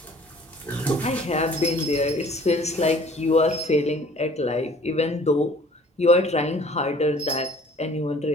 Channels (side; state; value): both; normal; correlation 0.53